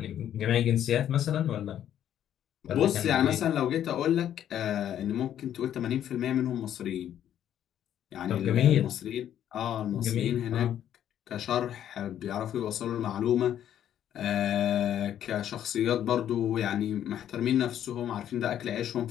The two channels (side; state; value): right; quieter; 10.6 dB